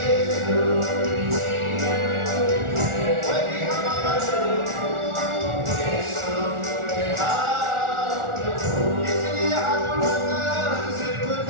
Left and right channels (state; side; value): late; left; 1.4 ms